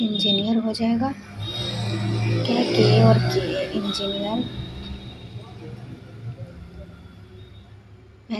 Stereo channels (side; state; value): both; identical; correlation 1.00